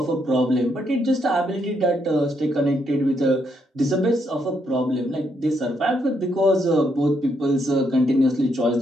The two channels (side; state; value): both; normal; correlation 0.76